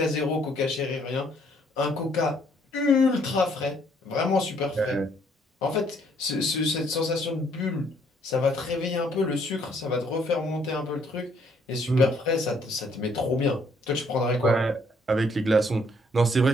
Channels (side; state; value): both; normal; correlation 0.66